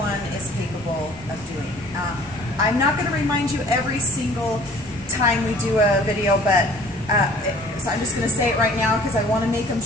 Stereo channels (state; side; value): normal; both; correlation 0.52